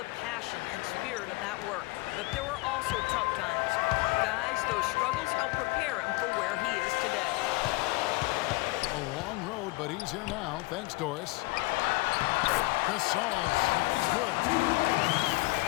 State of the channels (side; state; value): right; quieter; 23.1 dB